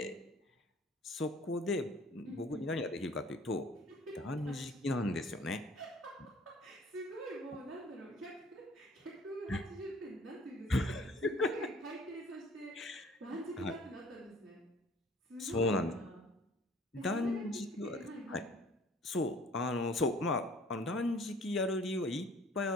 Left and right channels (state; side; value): normal; both; correlation 0.52